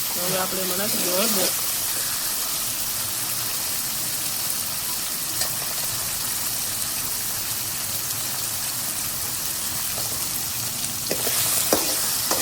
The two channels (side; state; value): both; identical; correlation 1.00